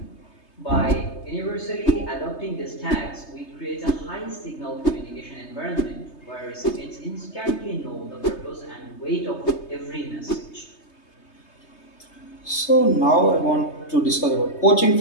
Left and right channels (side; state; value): right; late; 3.3 ms